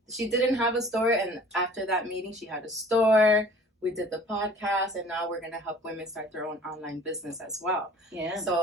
didn't have a store, and after that meeting she had a store. We did the podcast, and now we're gonna help women start their own online business as well. Yeah. So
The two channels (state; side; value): normal; both; correlation 0.49